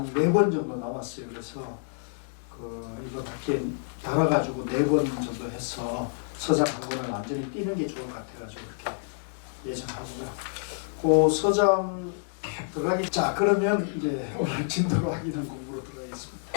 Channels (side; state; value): right; silent; 59 dB below the other